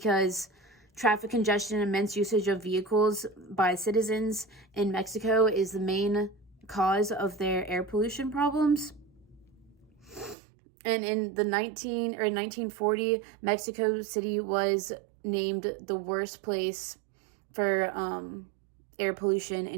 traffic congestion and immense usage of vehicles by citizens in Mexico is the main cause of their air pollution problems. And in 1940, Mexico City was named the worst place for air pollution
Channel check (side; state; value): left; drops out; at 10.4 s